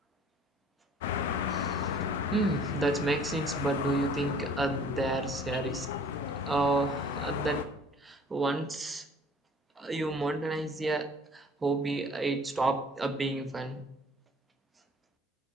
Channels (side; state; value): both; normal; correlation 0.52